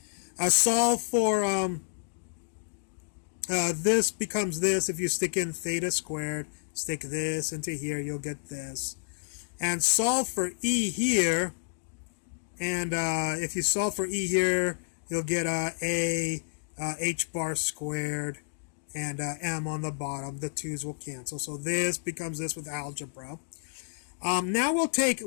Solve for this becomes this. If you stick in theta squared, stick this into here, you'll get this. And solve for e here. And if you solve for e here, you'll get a h bar squared and m on the bottom. The 2's will cancel. So this becomes this with algebra. Now we'll take,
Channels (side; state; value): right; silent; digital silence